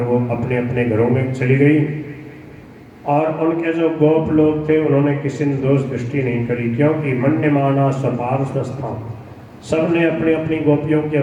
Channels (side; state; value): both; identical; correlation 1.00